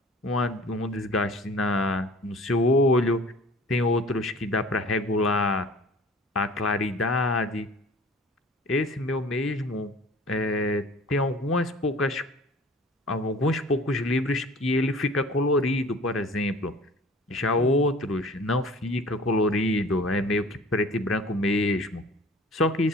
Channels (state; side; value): normal; both; correlation 0.46